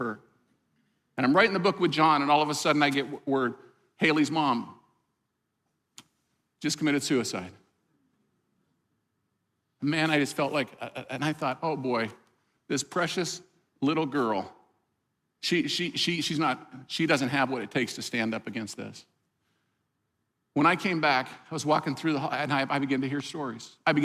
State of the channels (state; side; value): identical; both; correlation 1.00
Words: And I'm writing the book with John, and all of a sudden I get word, Haley's mom just committed suicide. Man, I just felt like, and I thought, oh boy, this precious little girl, she doesn't have what it takes to stand up against this. When I came back, I was walking through the hall, and I began to hear stories. I